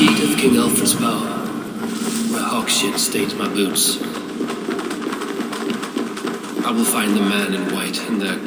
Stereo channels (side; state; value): both; identical; correlation 1.00